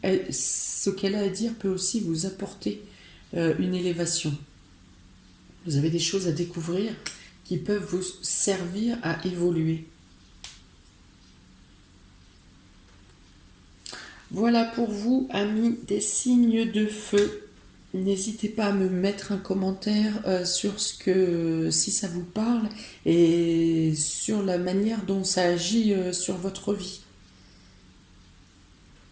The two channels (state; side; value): identical; both; correlation 1.00